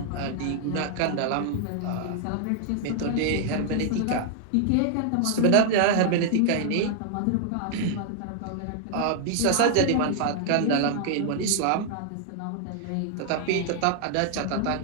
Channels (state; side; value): different; both; correlation 0.00